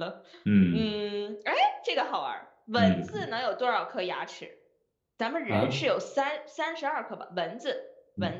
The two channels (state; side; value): identical; both; correlation 1.00